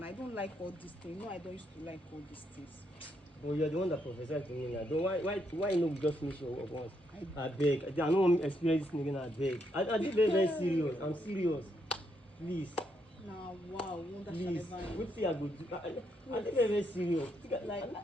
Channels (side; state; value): both; normal; correlation 0.77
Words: I don't like all these things. No, I don't used to like all these things. Well, you're the one that prophesied to me now. Why no just finish your work once? I beg. I don't want to experience this again. I beg. I did very serious. I'm serious. Please. Now, wow, please. What thing I go do? I did very serious. Like,